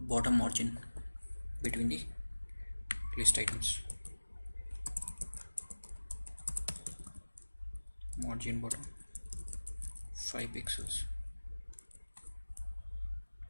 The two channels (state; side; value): inverted; both; correlation -1.00